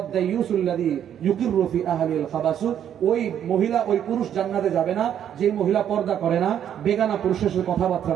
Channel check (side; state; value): left; quieter; 9.7 dB